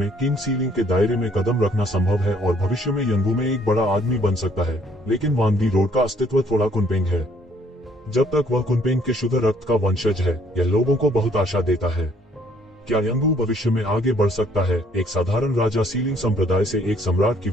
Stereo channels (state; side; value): normal; both; correlation 0.63